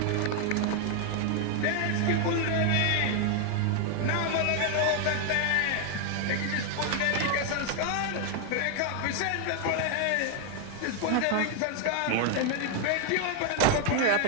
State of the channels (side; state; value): both; different; correlation 0.00